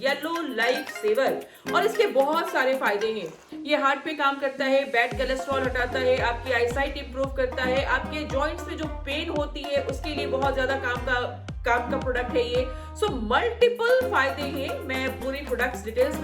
yellow life saver. और इसके बहुत सारे फायदे हैं। ये हार्ट पे काम करता है, बैड कोलेस्ट्रॉल हटाता है, आपकी आईसाइट इंप्रूव करता है, आपके जॉइंट्स में जो पेन होती है उसके लिए बहुत ज्यादा काम का प्रोडक्ट है ये। सो मल्टीपल फायदे हैं, मैं पूरी प्रोडक्ट्स डिटेल्स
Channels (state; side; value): identical; both; correlation 1.00